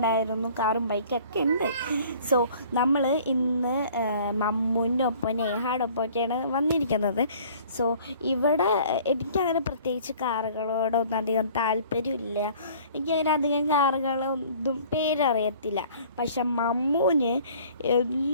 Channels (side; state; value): both; inverted; correlation -0.52